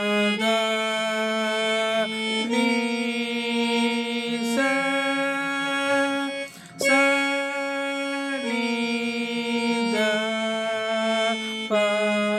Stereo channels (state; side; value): identical; both; correlation 1.00